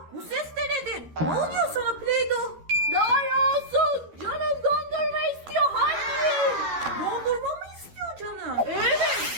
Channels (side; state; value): left; late; 13 ms